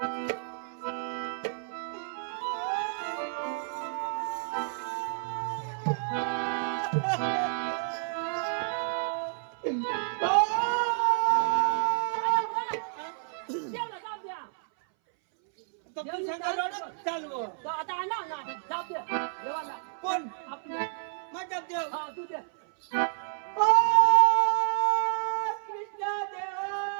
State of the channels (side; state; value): left; silent; 58 dB below the other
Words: देवला जाऊ द्या चालू तो आता आणा ना जाऊ द्या देवाला कोण आपले माझा देव हा तू दे ओ कृष्ण देवा